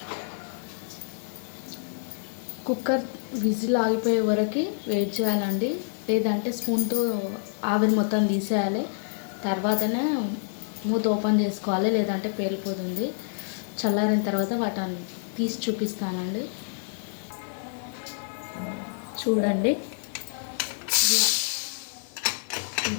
కుక్కర్ విజిల్ ఆగిపోయే వరకు వెయిట్ చేయాలండి. లేదంటే స్పూన్తో ఆవిరి మొత్తం తీసేయాలి. తర్వాతనే మూత ఓపెన్ చేసుకోవాలి, లేదంటే పేలిపోతుంది. చల్లారిన తర్వాత వాటిని తీసి చూపిస్తానండి. చూడండి, ఇలా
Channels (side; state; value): right; silent; digital silence